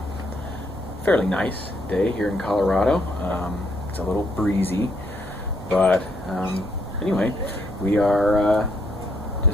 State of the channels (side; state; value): both; normal; correlation 0.72